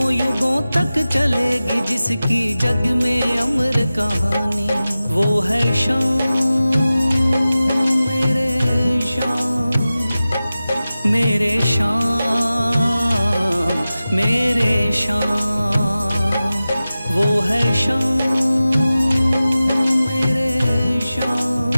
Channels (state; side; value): inverted; both; correlation -0.95